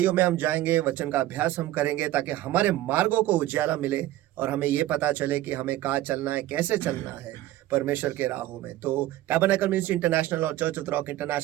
में हम जाएंगे, वचन का अभ्यास हम करेंगे ताकि हमारे मार्गों को उजियाला मिले और हमें ये पता चले कि हमें कहाँ चलना है, कैसे चलना है परमेश्वर के राहों में। तो टैबरनेकल मिनिस्ट्री इंटरनेशनल और चर्च ऑफ रॉक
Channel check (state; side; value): quieter; left; 15.0 dB